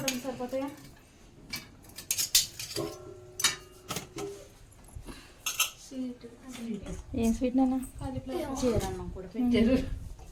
సరిపోతాయా? ఏం స్వీట్ నాన్న?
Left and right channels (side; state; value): both; identical; correlation 1.00